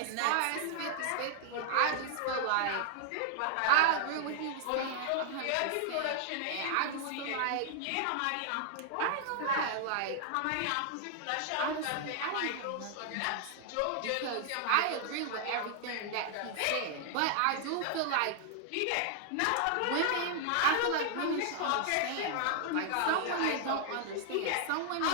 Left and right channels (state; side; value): different; both; correlation 0.00